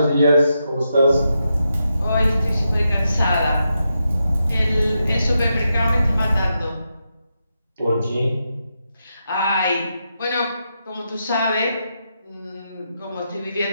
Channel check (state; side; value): inverted; both; correlation -0.85